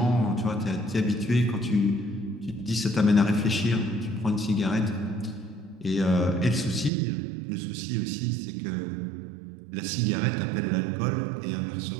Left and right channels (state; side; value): drops out; left; at 6.9 s